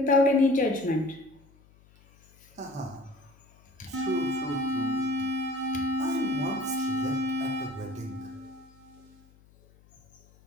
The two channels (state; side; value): noise; left; hum, 28 dB below the sound